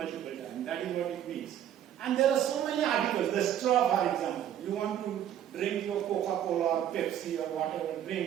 times. That is what it means. And there are so many articles. The straw, for example. You want to drink your Coca-Cola or Pepsi or whatever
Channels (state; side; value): quieter; left; 10.5 dB